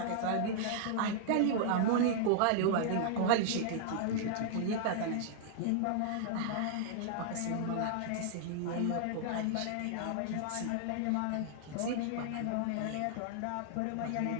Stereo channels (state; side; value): different; both; correlation -0.01